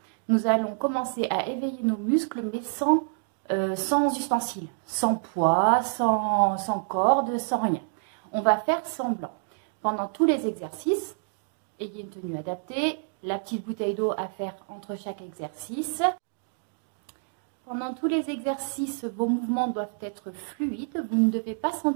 Nous allons commencer à éveiller nos muscles, mais sans ustensiles, sans poids, sans corde, sans rien. On va faire semblant. Pendant tous les exercices, ayez une tenue adaptée, la petite bouteille d'eau à faire entre chaque exercice. Pendant tous les exercices, vos mouvements doivent être fluides. Vous ne devez pas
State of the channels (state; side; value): silent; left; digital silence